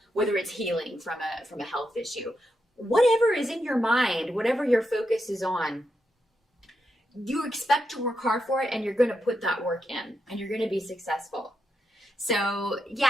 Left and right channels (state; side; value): normal; both; correlation 0.85